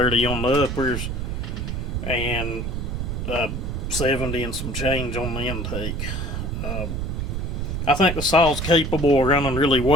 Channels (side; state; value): right; noise; rumble, 3 dB below the sound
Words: on the uppers, and 70 and some change on the intake. I think the saw's capable of running really